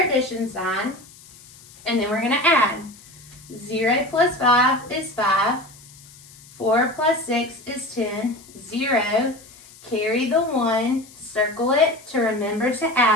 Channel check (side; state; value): left; noise; hiss, 22 dB below the sound